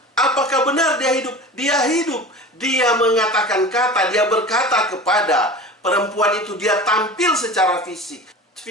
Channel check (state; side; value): normal; both; correlation 0.35